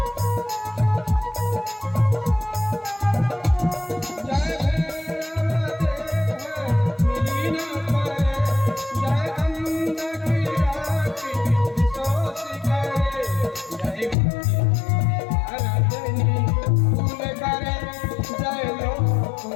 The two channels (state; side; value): drops out; right; at 14.2 s